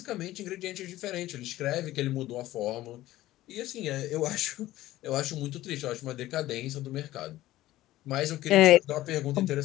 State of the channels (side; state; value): right; quieter; 15.7 dB